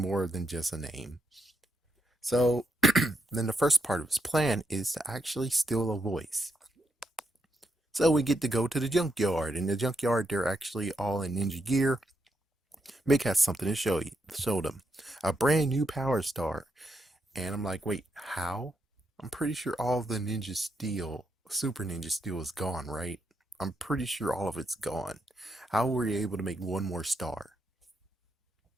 than just a name. So then the first part of his plan is to actually steal a voice. So we get to go to the junkyard. In the junkyard, they're actually all in ninja gear. Mick has something to show them. A brand new power star. And I'm like, wait, how? I'm pretty sure all of the Ninja Steel, Super Ninja Steel is gone, right? I'm pretty sure all of it's gone. How were you able to make one more star?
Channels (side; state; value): both; normal; correlation 0.81